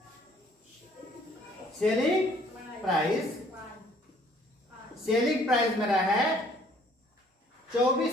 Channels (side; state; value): both; normal; correlation 0.59